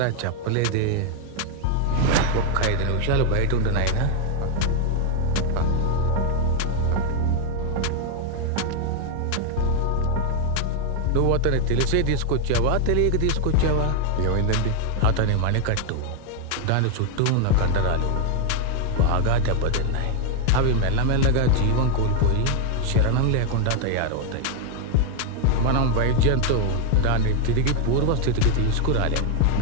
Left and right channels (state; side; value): different; both; correlation 0.01